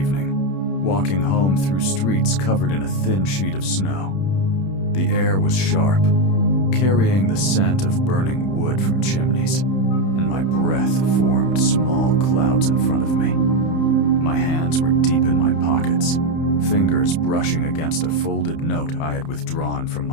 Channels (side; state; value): right; late; 31 ms